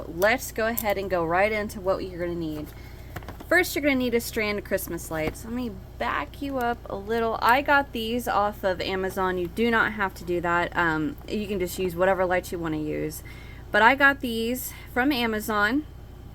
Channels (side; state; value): both; identical; correlation 1.00